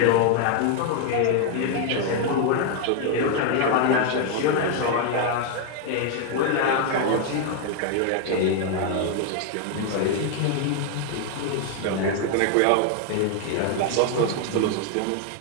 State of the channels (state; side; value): different; both; correlation 0.00